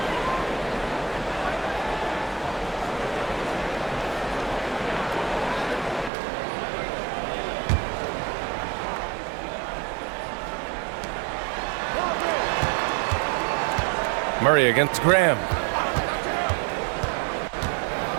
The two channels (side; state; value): left; drops out; at 6.1 s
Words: Murray against Graham.